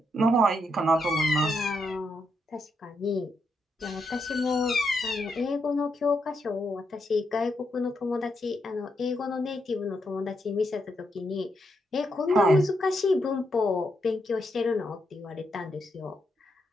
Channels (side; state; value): both; normal; correlation 0.80